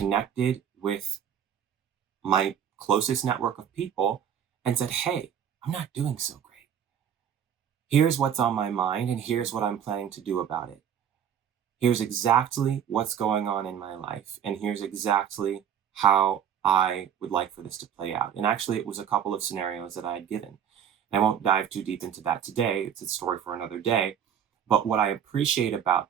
with my closest network of people and said, hey, I'm not doing so great. Here's what's on my mind, and here's what I'm planning to do about it. Here's exactly what's going on in my life, and here's exactly how I would like for this to play out. And actually, it was a couple of scenarios that I had given. I won't dive too deep into that today. It's a story for another day. But what I appreciate about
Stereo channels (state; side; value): quieter; left; 8.7 dB